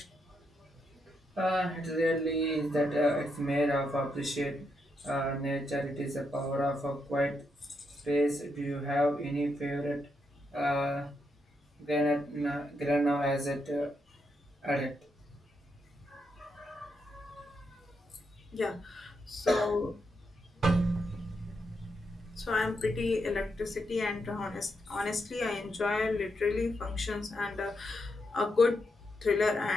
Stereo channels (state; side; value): normal; both; correlation 0.81